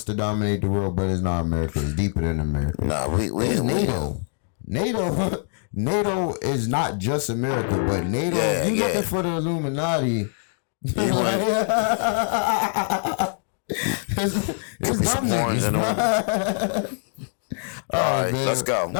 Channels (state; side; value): silent; right; 63 dB below the other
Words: to dominate the world, but it's not America. It's deeper than America. Nah, it's NATO. NATO is not just America, but NATO. You looking for the Illuminati? It's dumb niggas. All right, let's go.